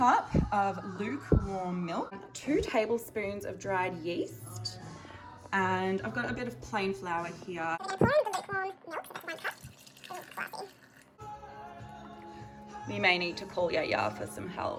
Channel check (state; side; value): identical; both; correlation 1.00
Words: of lukewarm milk, 2 tablespoons of dried yeast, and I've got a bit of plain flour here. We may need to call Yaya for some